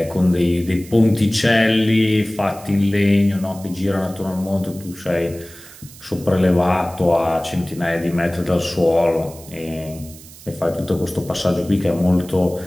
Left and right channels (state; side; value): noise; right; hiss, 19 dB below the sound